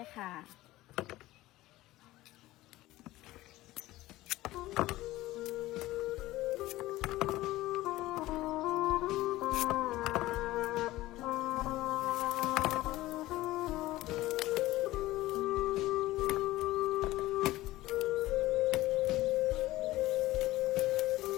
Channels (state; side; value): quieter; right; 17.2 dB